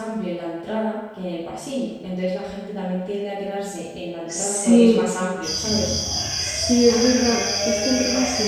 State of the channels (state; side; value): identical; both; correlation 1.00